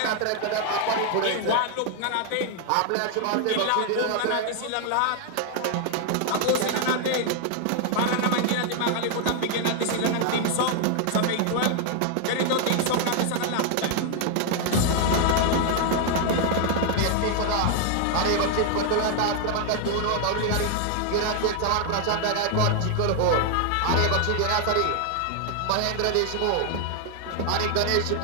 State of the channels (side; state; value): both; different; correlation 0.00